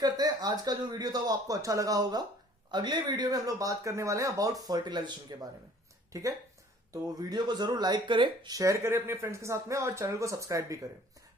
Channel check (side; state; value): both; normal; correlation 0.53